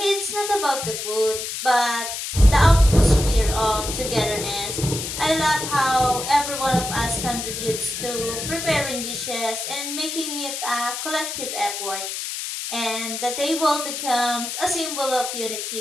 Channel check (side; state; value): left; noise; hiss, 5 dB below the sound